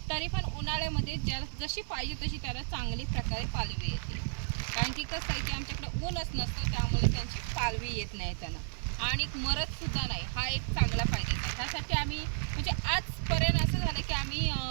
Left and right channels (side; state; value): left; silent; digital silence